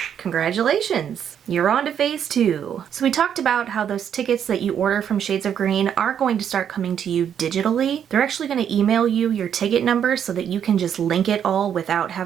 congratulations! You're on to phase 2. So we talked about how those tickets that you order from Shades of Green are going to start coming to you digitally. They're actually going to email you your ticket number so that you can just link it all without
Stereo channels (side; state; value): left; quieter; 8.8 dB